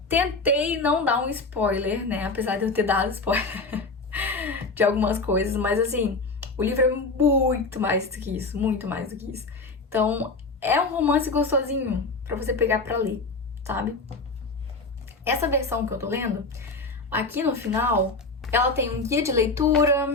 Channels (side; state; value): right; quieter; 3.5 dB